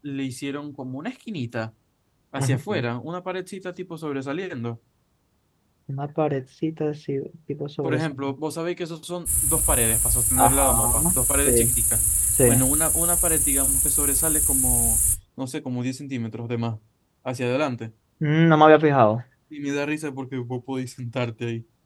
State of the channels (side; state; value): both; identical; correlation 1.00